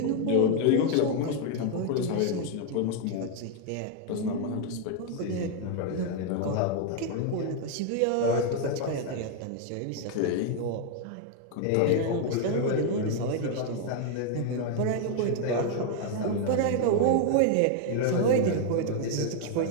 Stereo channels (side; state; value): both; different; correlation 0.00